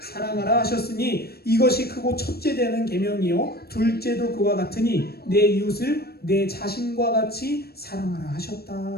사랑하라 하셨으니 이것이 크고 첫째 되는 계명이요 둘째도 그와 같으니 내 이웃을 내 자신과 같이 사랑하라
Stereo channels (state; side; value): late; right; 0.46 ms